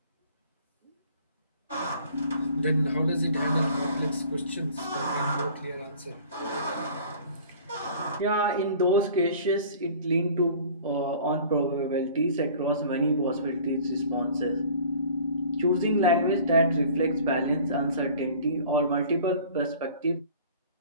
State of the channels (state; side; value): inverted; both; correlation -0.47